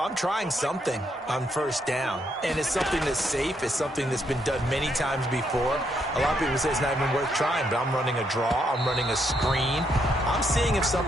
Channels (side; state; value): both; normal; correlation 0.76